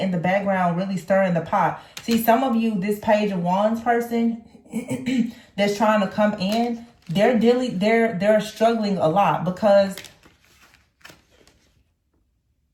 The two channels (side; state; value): both; identical; correlation 1.00